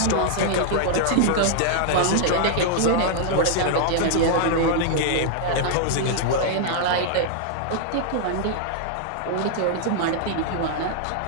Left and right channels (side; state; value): both; different; correlation -0.01